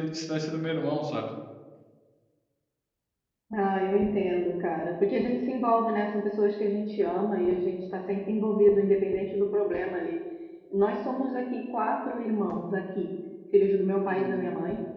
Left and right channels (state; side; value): identical; both; correlation 1.00